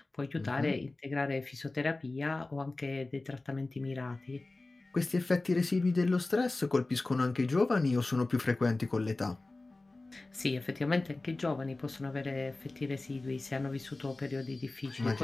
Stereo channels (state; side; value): quieter; right; 3.1 dB